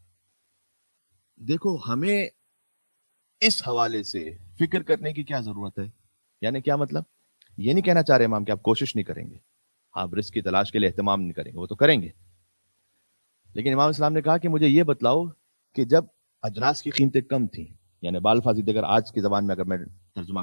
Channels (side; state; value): both; inverted; correlation -1.00